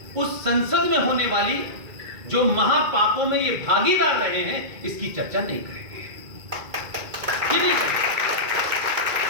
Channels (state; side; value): late; left; 2.2 ms